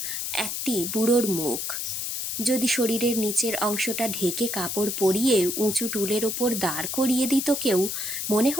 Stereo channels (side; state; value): left; noise; hiss, 3 dB below the sound